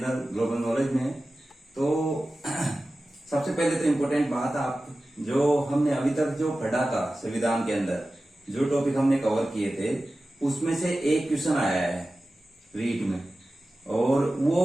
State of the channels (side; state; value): both; normal; correlation 0.95